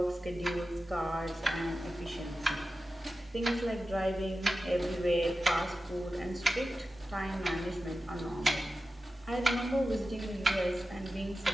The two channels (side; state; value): both; normal; correlation 0.93